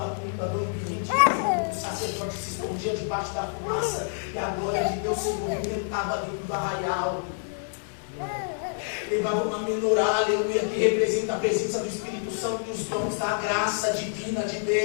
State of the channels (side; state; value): right; silent; digital silence